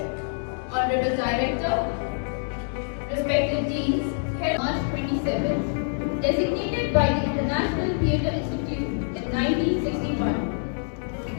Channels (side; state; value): right; silent; digital silence